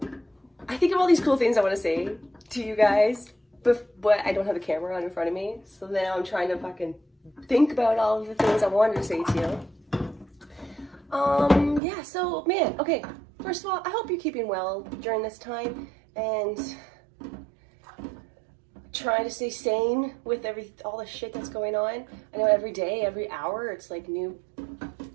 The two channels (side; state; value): left; drops out; at 11.8 s